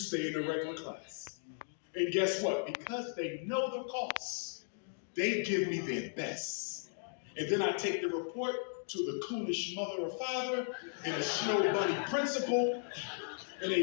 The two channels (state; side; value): silent; right; digital silence